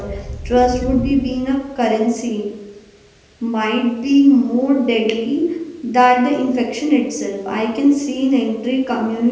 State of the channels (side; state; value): both; identical; correlation 1.00